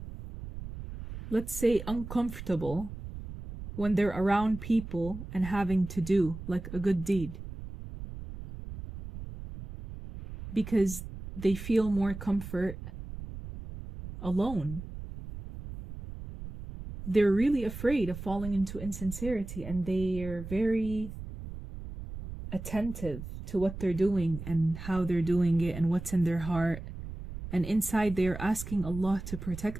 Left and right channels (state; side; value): noise; right; rumble, 10 dB below the sound